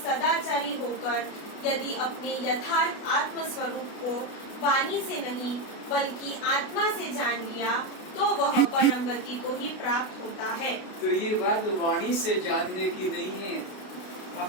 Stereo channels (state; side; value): late; right; 32 ms